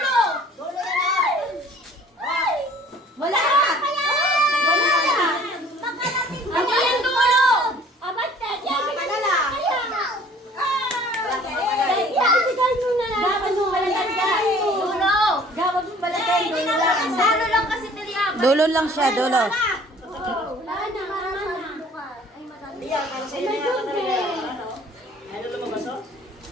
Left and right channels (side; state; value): both; normal; correlation 0.52